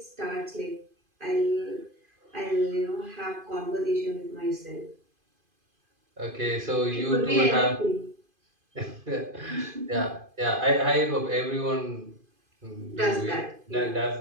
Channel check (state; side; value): late; left; 2.5 ms